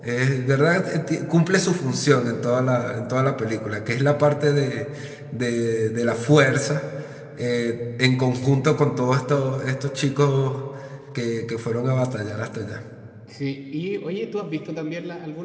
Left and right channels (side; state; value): both; identical; correlation 1.00